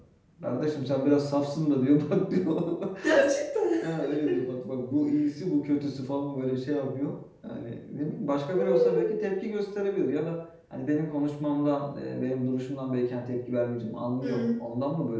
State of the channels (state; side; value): identical; both; correlation 1.00